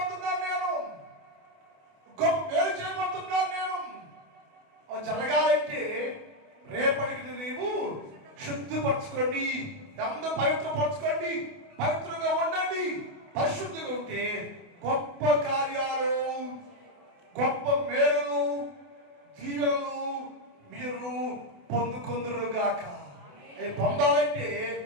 నేను గొప్ప మేలు చేయబోతున్నాను. నేను అవి జరగాలంటే రేపటికి నీవు శుద్ధిపరచుకోండి, అందరూ పవిత్రపరచుకోండి, పవిత్రంగా ఉండండి. పరిశుద్ధిగా ఉంటే గొప్ప కార్యాలు, గొప్ప మేలు, దీవెనలు మీరు పొందుకుందురుగాక. అవి పొందాలంటే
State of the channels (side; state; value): left; late; 28 ms